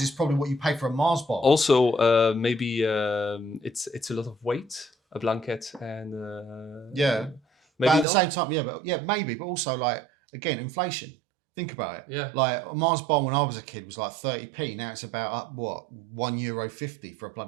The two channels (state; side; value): drops out; left; at 8.1 s